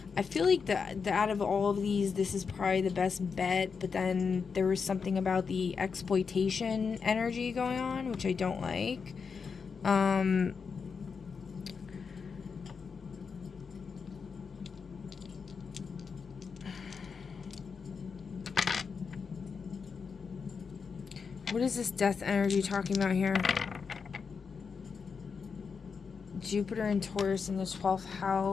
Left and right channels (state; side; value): quieter; right; 5.6 dB